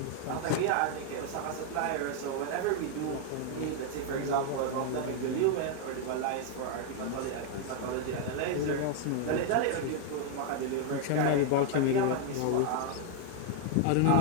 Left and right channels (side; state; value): both; different; correlation 0.00